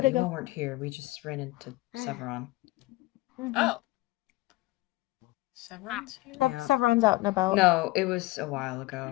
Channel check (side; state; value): right; quieter; 20.0 dB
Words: bit you ago. all weren't here. We just ran into Severon. Mhm. Oh. Severance here? Yeah. Sevron's out and about. No, it was a while